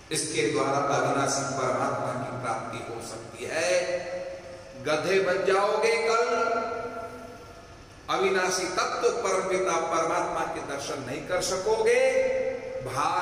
इसके द्वारा अविनाशी परमात्मा की प्राप्ति हो सकती है। गधे बन जाओगे कल, अविनाशी तत्व परमपिता परमात्मा के दर्शन नहीं कर सकोगे,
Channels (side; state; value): both; identical; correlation 1.00